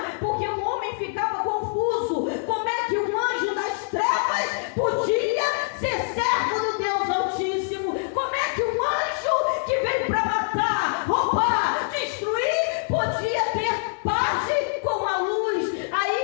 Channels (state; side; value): silent; right; digital silence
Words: porque o homem ficava confuso. Como é que um anjo das trevas podia ser servo do Deus Altíssimo? Como é que um anjo que vem para matar, roubar, destruir, podia ter parte com a luz?